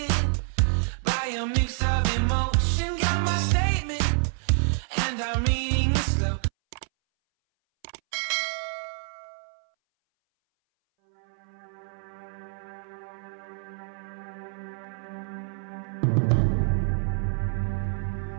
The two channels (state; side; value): silent; left; 59 dB below the other